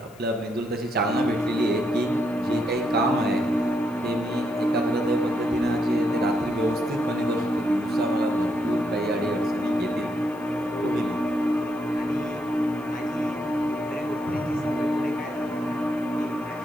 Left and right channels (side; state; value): left; noise; hiss, 27 dB below the sound